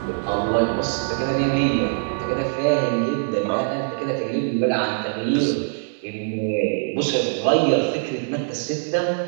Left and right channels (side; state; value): left; silent; digital silence